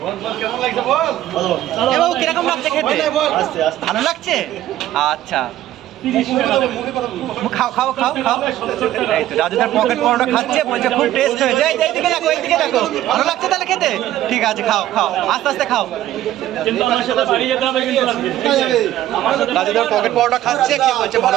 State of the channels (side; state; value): left; quieter; 13.4 dB